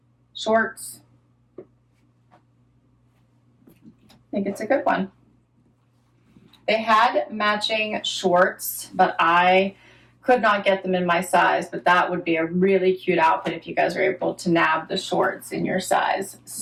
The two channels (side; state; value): both; identical; correlation 1.00